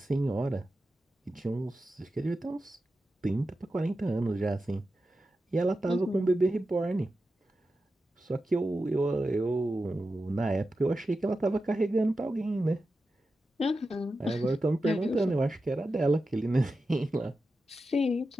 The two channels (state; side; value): normal; both; correlation 0.91